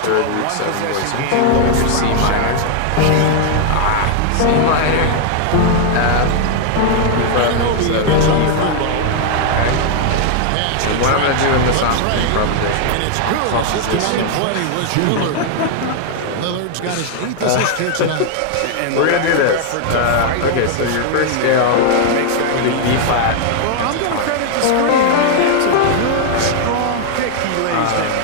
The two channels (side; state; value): both; different; correlation 0.00